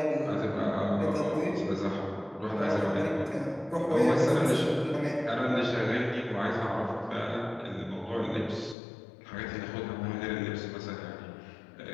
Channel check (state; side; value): drops out; right; at 8.8 s